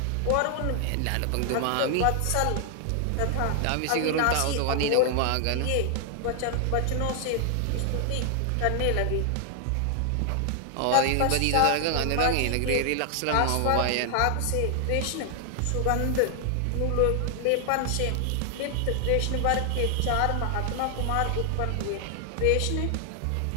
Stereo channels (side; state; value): both; different; correlation 0.00